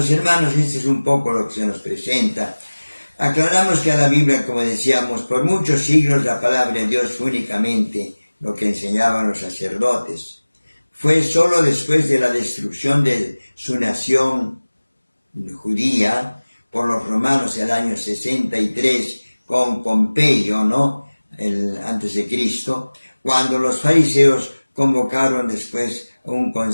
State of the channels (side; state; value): both; inverted; correlation -1.00